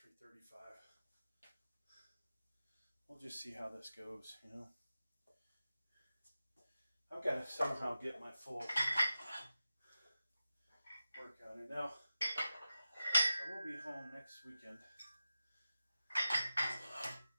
We'll just see how this goes, you know. I've got to somehow get my full workout in. Now, I will be home next weekend.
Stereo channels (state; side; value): inverted; both; correlation -0.93